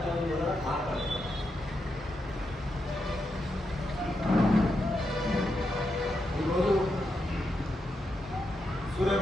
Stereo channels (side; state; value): both; normal; correlation 0.84